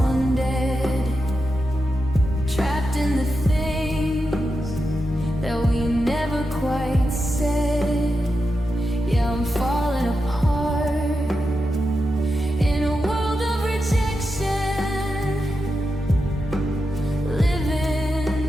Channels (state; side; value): normal; both; correlation 0.88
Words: dead, trapped in the things that we never quite said. Yeah, I'm falling apart in a world of rejection,